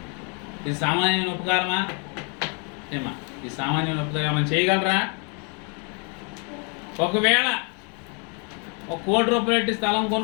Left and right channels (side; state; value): right; quieter; 36.3 dB